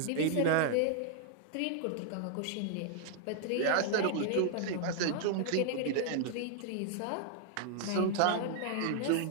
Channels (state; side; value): different; both; correlation 0.00